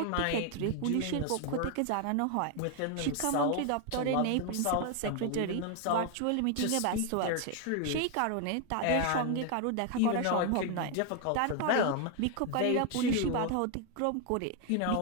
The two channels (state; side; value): different; both; correlation 0.01